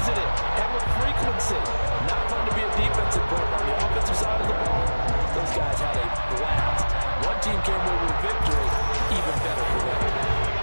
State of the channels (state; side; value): inverted; both; correlation -1.00